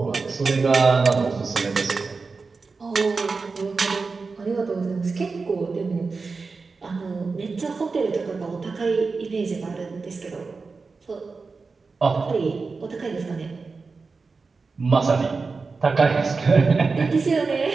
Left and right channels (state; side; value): quieter; left; 4.3 dB